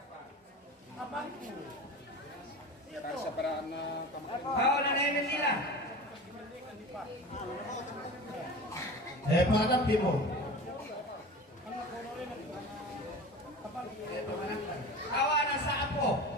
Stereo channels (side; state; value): both; normal; correlation 0.34